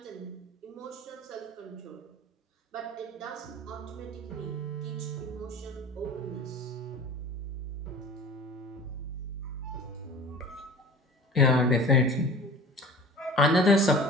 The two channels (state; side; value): normal; both; correlation 0.40